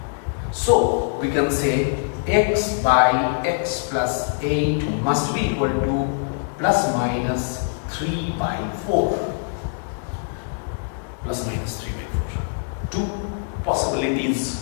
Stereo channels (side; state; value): right; silent; digital silence